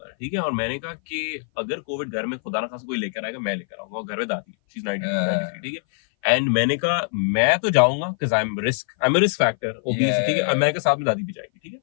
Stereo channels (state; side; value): silent; right; 58 dB below the other